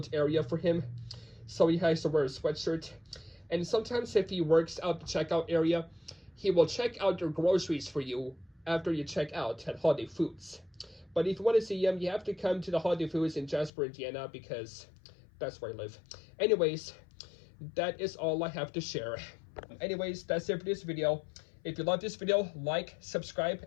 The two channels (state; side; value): drops out; right; at 13.7 s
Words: area for him, so he has to wear a sweatshirt. And sometimes if he works out the checkout area, he will check out your groceries for you after you check out at Holiday Foods. But if you want to see him, you have to come to the Holiday Foods in Jasper, Indiana, because that's where I live. Anyways, that is all I have to share. Anyways, that's it for this video. If you love this video, like, subscribe,